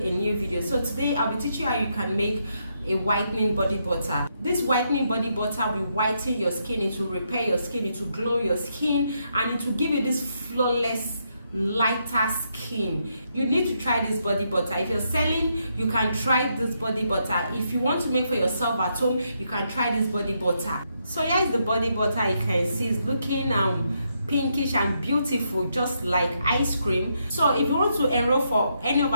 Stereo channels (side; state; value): both; inverted; correlation -0.78